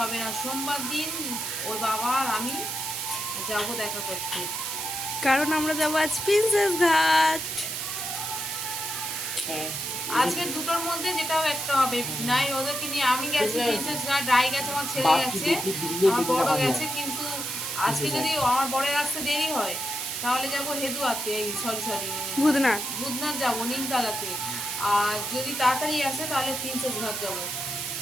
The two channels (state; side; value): noise; right; hiss, 4 dB below the sound